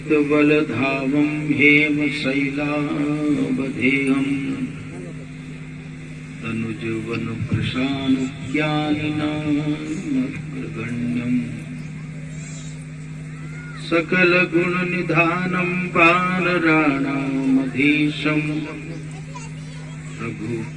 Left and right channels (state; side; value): identical; both; correlation 1.00